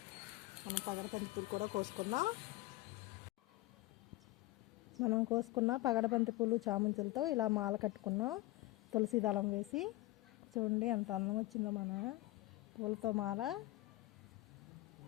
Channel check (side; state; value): right; quieter; 18.1 dB